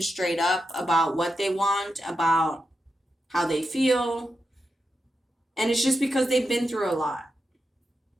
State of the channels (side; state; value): both; normal; correlation 0.88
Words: straight up about what they want, about how they feel. And it's just because they've been through a lot.